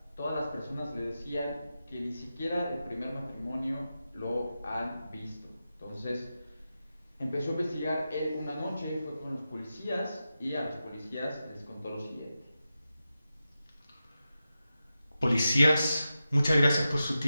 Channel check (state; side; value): inverted; both; correlation -0.91